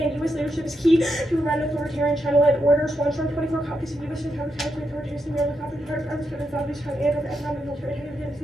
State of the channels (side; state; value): both; normal; correlation 0.83